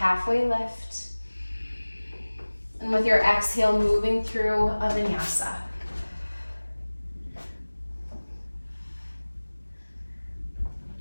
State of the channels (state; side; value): inverted; both; correlation -1.00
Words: lift. And with your exhale, moving through a vinyasa.